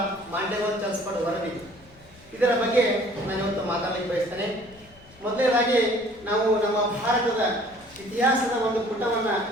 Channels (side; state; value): left; noise; rumble, 26 dB below the sound